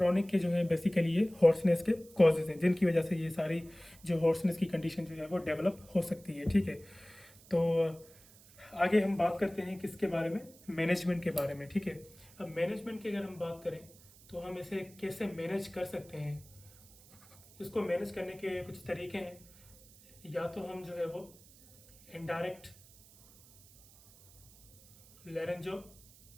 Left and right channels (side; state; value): right; noise; hiss, 24 dB below the sound